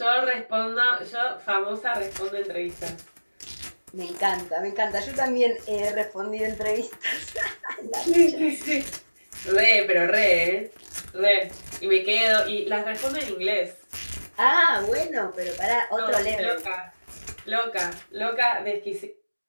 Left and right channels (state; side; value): inverted; both; correlation -1.00